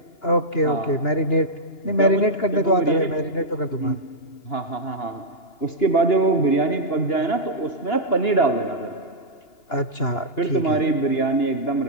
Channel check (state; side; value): late; right; 2.9 ms